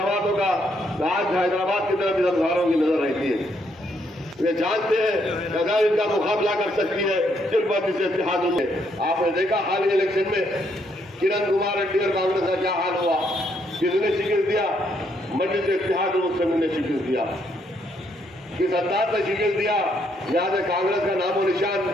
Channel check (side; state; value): both; normal; correlation 0.73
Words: का आज हैदराबाद की तरफ इस अंधारों की नजर रहती है। वे जानते हैं कि अगर इनका मुकाबला कर सकती है सिर्फ जिस इत्तेहाद में। आपने देखा हाल ही इलेक्शन में किरण कुमार रेड्डी और कांग्रेस का क्या हाल हुआ, किसने शिकस्त दिया? मजलिस इत्तेहाद मुस्लिमीन ने शिकस्त दिया। किस अंदाज से शिकस्त दिया? जहां से कांग्रेस का नामो